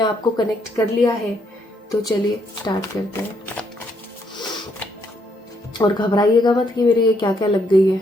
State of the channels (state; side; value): normal; both; correlation 0.73